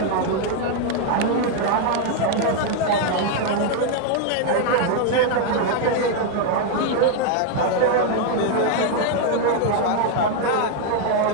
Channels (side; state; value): both; different; correlation 0.00